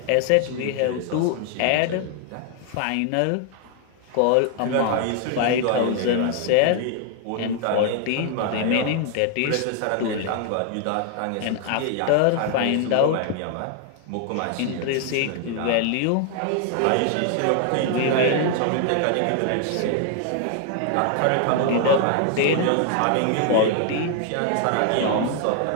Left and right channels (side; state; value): both; different; correlation 0.00